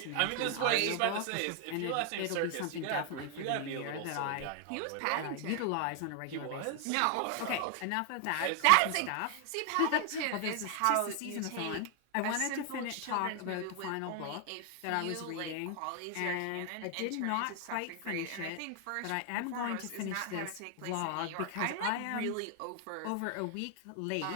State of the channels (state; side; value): different; both; correlation 0.00